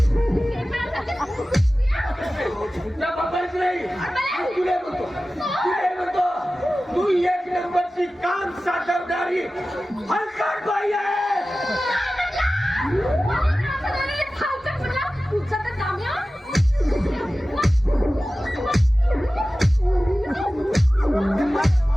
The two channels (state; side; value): normal; both; correlation 0.95